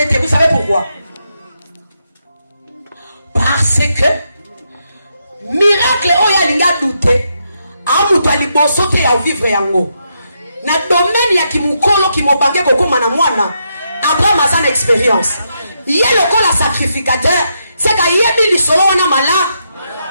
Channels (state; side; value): inverted; both; correlation -0.81